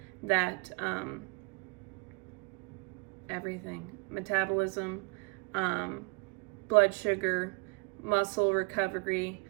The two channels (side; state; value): left; quieter; 30.9 dB